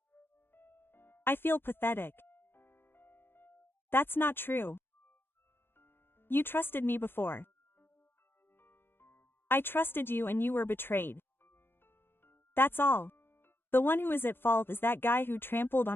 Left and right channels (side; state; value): right; late; 0.10 ms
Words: I feel pathetic. That's not true. You trusted me before. I trusted you and you were betrayed. That's all. The one who is at fault is that guy who trampled